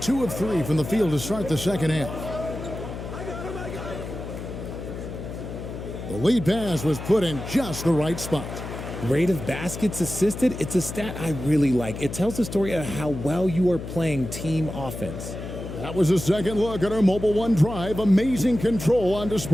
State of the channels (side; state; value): left; noise; hum, 9 dB below the sound